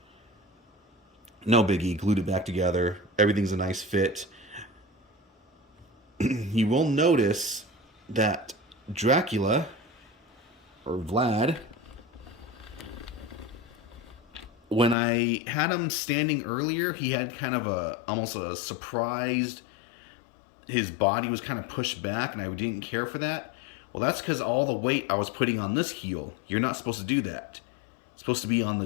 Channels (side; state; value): right; drops out; at 15.0 s